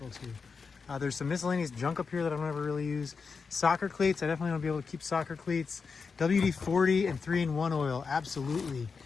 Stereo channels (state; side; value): quieter; right; 5.2 dB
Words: too. There's some miscellaneous junk up here that I don't ever really use. Soccer cleats, I definitely want to be able to keep soccer cleats. WD-40 and 3-in-1 oil, absolutely.